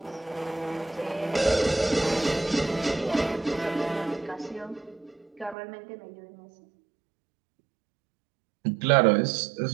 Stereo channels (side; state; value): left; drops out; at 5.6 s